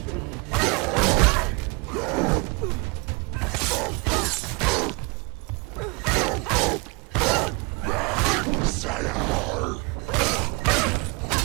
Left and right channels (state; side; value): quieter; left; 29.0 dB